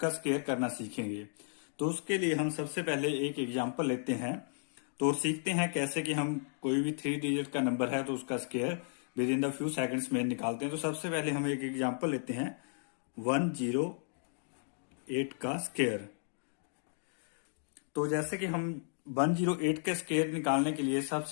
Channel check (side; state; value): right; silent; digital silence